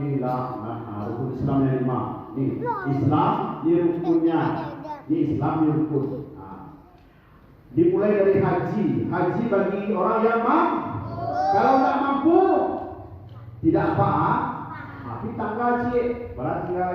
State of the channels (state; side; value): identical; both; correlation 1.00